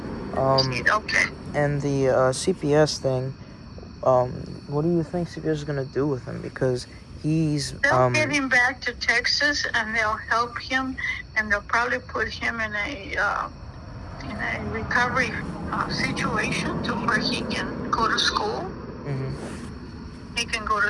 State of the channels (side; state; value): both; identical; correlation 1.00